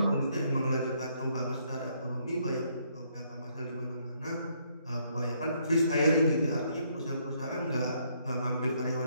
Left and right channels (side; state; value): both; inverted; correlation -0.71